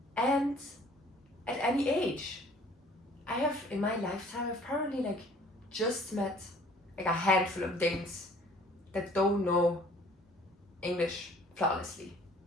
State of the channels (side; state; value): both; normal; correlation 0.54